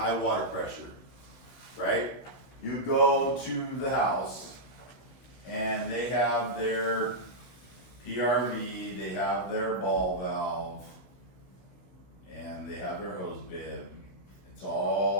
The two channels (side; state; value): right; late; 16 ms